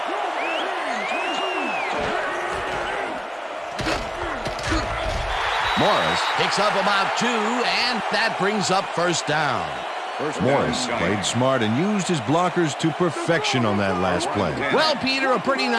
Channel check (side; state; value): both; identical; correlation 1.00